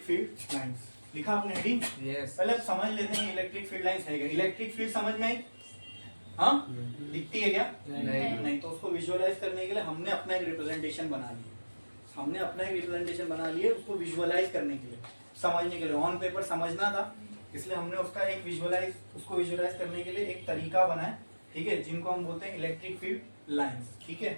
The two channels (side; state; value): both; inverted; correlation -1.00